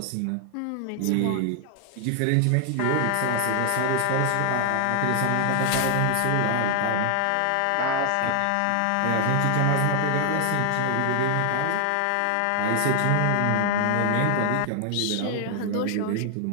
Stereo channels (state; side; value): different; both; correlation 0.00